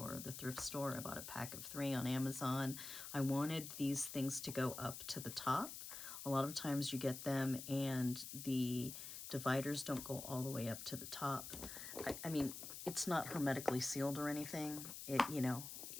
or the thrift store. I bought a pack of 3 on Amazon. I wanted these things to go up to the top. A lot of times you get them and the dividers don't go all the way up to the top. I mean, it's not hermetically sealed or anything.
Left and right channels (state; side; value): noise; left; hiss, 8 dB below the sound